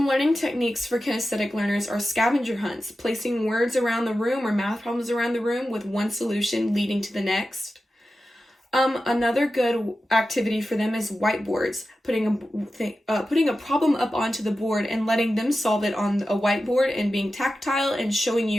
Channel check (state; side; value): normal; both; correlation 0.93